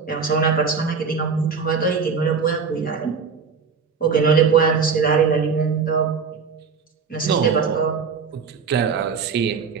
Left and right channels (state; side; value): quieter; left; 5.6 dB